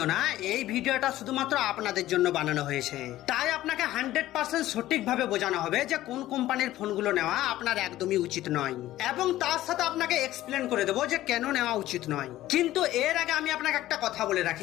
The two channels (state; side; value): quieter; right; 14.9 dB